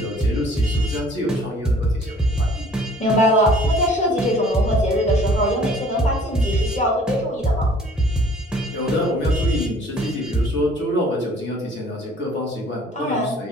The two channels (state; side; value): normal; both; correlation 0.54